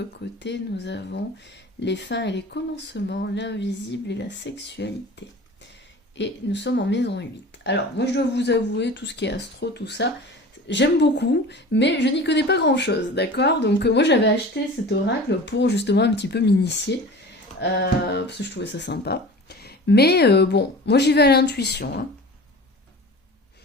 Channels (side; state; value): both; normal; correlation 0.38